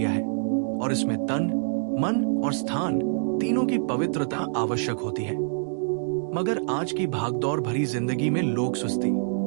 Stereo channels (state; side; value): silent; left; digital silence